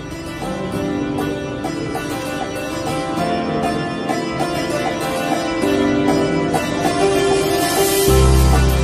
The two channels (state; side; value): identical; both; correlation 1.00